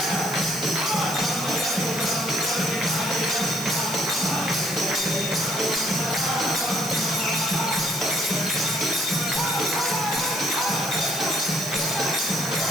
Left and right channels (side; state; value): right; noise; hiss, 10 dB below the sound